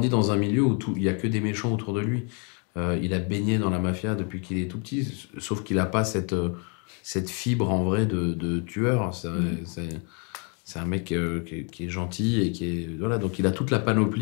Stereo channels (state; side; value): quieter; right; 37.2 dB